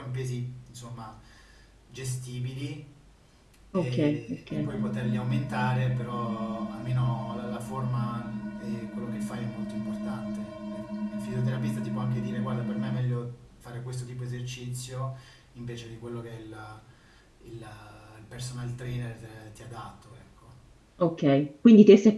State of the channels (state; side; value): identical; both; correlation 1.00